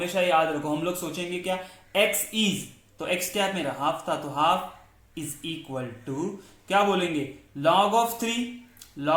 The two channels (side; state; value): both; identical; correlation 1.00